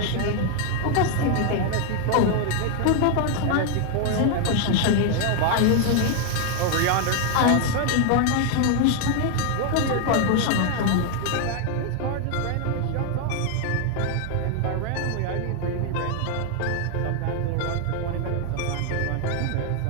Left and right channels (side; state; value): both; different; correlation 0.00